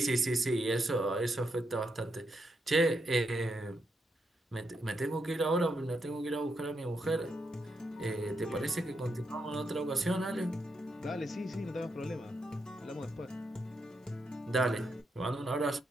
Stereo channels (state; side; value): normal; both; correlation 0.82